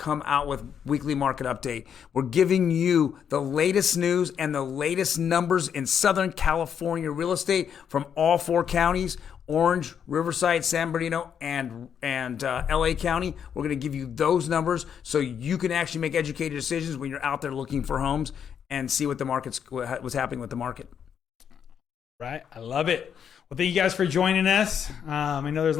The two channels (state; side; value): quieter; right; 8.0 dB